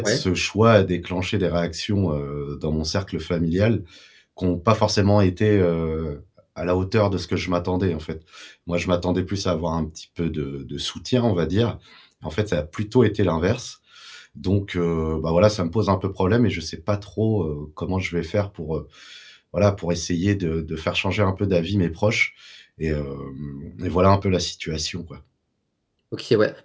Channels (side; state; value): both; identical; correlation 1.00